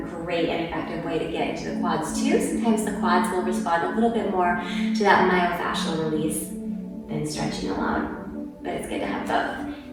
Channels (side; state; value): both; identical; correlation 1.00